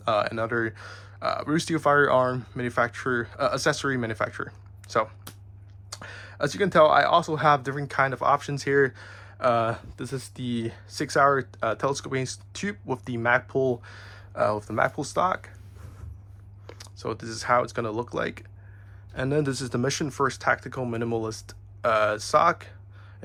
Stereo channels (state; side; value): identical; both; correlation 1.00